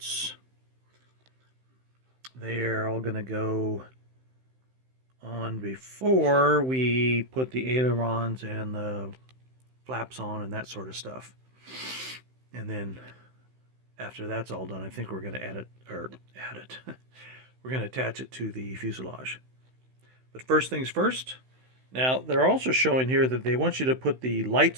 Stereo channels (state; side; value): late; left; 16 ms